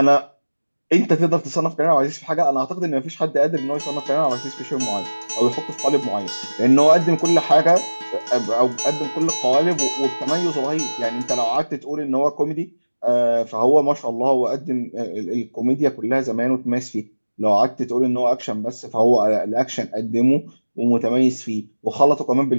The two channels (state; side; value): inverted; both; correlation -1.00